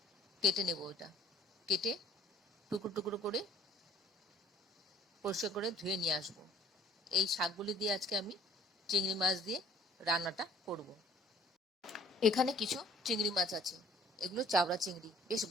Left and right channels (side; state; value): both; normal; correlation 0.54